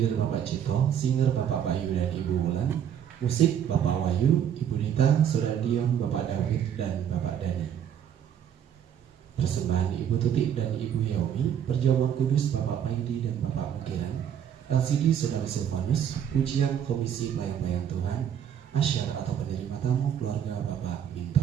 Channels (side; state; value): left; quieter; 9.2 dB